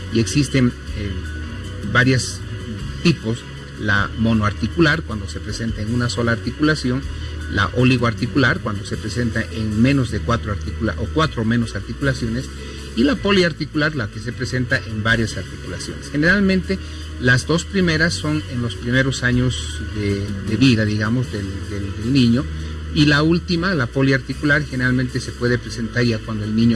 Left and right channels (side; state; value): both; identical; correlation 1.00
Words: Y existen varios tipos: la monoarticular, cuando se presenta en una sola articulación; la oligoarticular, cuando se presenta en menos de 4 o menos articulaciones; y la poliarticular, la que se presenta en varias articulaciones. Generalmente las 2 primeras son en los primeros años de vida, digamos, del niño, y la última, la poliarticular, generalmente se puede presentar ya cuando el niño